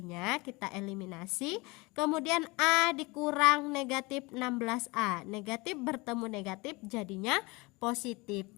kita eliminasi. Kemudian A dikurang negatif 16A, negatif bertemu negatif jadinya positif.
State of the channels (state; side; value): quieter; right; 24.9 dB